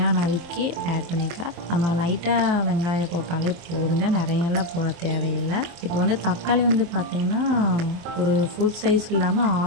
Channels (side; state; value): left; late; 23 ms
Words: நறுக்கி ஆட் பண்ணிக்கலாம். நம்ம லைட்டாக வெங்காயம் போட்டாலே போதுங்க, நிறையெல்லாம் போட தேவையில்லை. இப்போ வந்து தக்காளி வந்து பார்த்திங்கன்னா ஒரு ஃபுல் சைஸ் இல்லாமல்